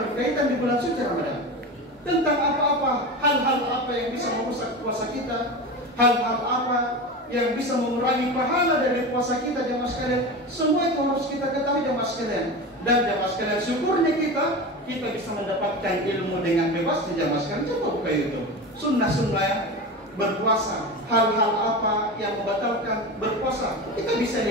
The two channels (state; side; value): normal; both; correlation 0.26